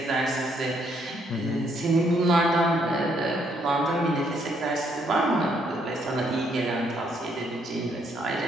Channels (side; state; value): both; normal; correlation 0.71